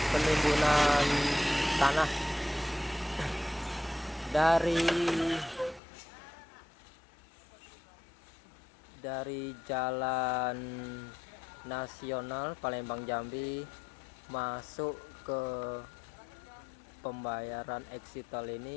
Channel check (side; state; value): right; drops out; at 5.8 s